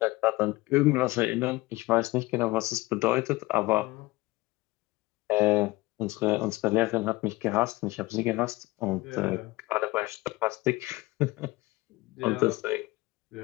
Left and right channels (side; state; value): right; quieter; 20.6 dB